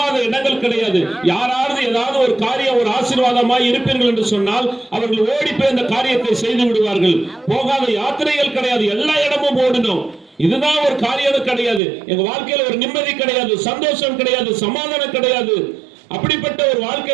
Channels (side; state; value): left; drops out; at 11.8 s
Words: இடங்கள் கிடையாது. யாராவது ஏதாவது ஒரு காரியம் ஒரு ஆசீர்வாதமாய் இருப்பீர்கள் என்று சொன்னால் அவர்கள் ஓடி போய் அந்த காரியத்தை செய்து விடுவார்கள். போகாத யாத்திரைகள் கிடையாது, எல்லா இடமும் ஓடணும். இதுதான் ஒரு காரியம் கிடையாது. எங்க வாழ்க்கையில ஒரு நிம்மதி கிடையாது, சந்தோஷம் கிடையாது, சமாதானம் கிடையாது. அப்படிப்பட்ட ஒரு